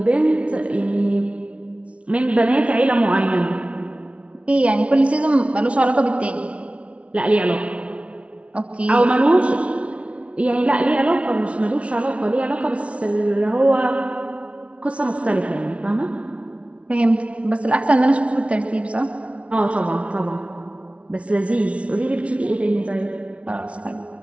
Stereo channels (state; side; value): late; left; 0.062 ms